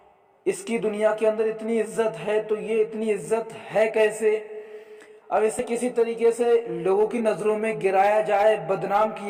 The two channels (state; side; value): identical; both; correlation 1.00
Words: اس کی دنیا کے اندر اتنی عزت ہے تو یہ اتنی عزت ہے کیسے؟ اب اسے کسی طریقے سے لوگوں کی نظروں میں گرایا جائے، بدنام